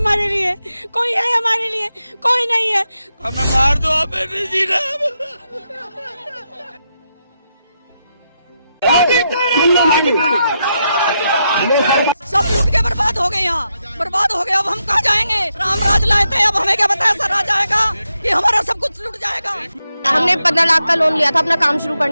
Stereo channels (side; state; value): both; inverted; correlation -0.84